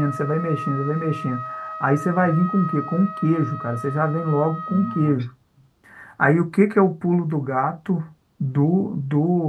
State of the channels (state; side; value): identical; both; correlation 1.00